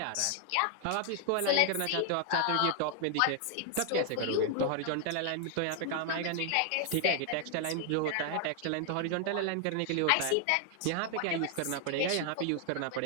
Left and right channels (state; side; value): different; both; correlation 0.00